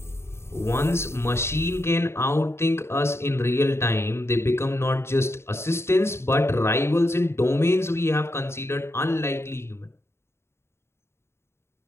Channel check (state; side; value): late; right; 0.12 ms